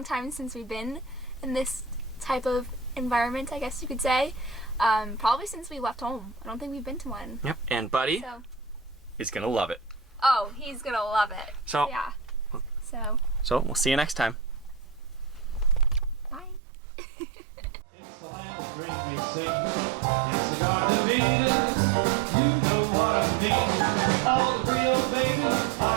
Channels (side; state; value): left; drops out; at 16.6 s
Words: time since we've been in this type of environment, I guess you could say. Probably since we left home. I don't think we've been to one. Yep. And buddy, so, is gonna love it. Oh, he's gonna love it. So Yeah. So we'll see you next time. Bye. It's the land of green we sing. It's the Garden of Eden. You know what I mean. All the Rio babies,